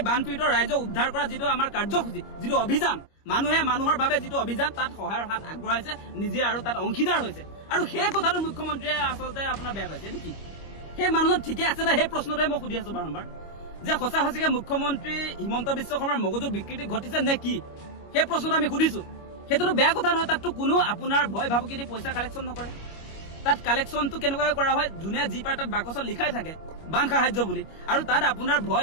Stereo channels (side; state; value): right; late; 25 ms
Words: বানপীড়িত ৰাইজক উদ্ধাৰ কৰা যিটো আমাৰ কাৰ্যসূচী যিটো অভিযান মানুহে মানুহৰ বাবে যিটো অভিযান তাত সহায়ৰ হাত আগবঢ়াইছে নিজে আৰু তাত অংশীদাৰ হৈছে আৰু সেই কথাটো মুখ্যমন্ত্ৰীয়ে আচলতে আপোনাৰ বেয়া পাইছে এইটো কি সেই মানুহজন ঠিকে আছে না সেই প্ৰশ্নটোৱে মই সুধি আছো বাৰম্বাৰ যে সঁচা সঁচিকে মুখ্যমন্ত্ৰী হিমন্ত বিশ্ব শৰ্মাৰ মগজুৰ বিকৃতি ঘটিছে নে কি সেই প্ৰশ্নটো আমি সুধিছো সেইটোতো বেয়া কথা নহয় তাততো কোনো আপোনাৰ ভয় ভাবুকি দি পইচা কালেকশ্যন নকৰে তাত কালেকশ্যনটো কেনেকৈ কৰা হয় যোনে যি পাৰে তাত বাকচত লিখাই থাকে বান সাহায্য বুলি আৰু তাত আপোনাৰ